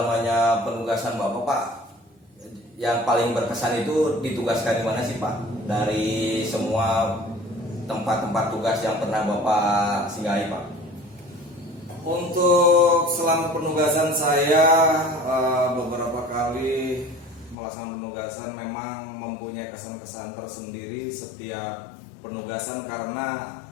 penugasan Bapak, Pak, yang paling berkesan itu ditugaskan di mana sih, Pak? Dari semua tempat-tempat tugas yang pernah Bapak singgahi, Pak? Untuk selama penugasan saya beberapa kali melaksanakan penugasan memang mempunyai kesan-kesan tersendiri setiap penugasan, karena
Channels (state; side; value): drops out; right; at 17.6 s